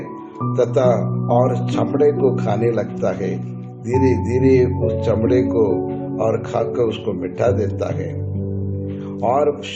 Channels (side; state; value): both; identical; correlation 1.00